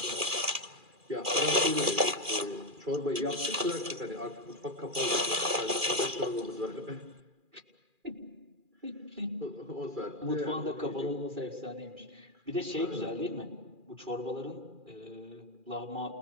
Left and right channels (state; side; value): late; left; 2.4 ms